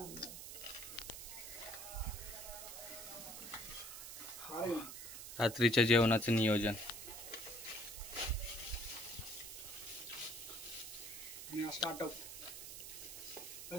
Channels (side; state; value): right; noise; hiss, 9 dB below the sound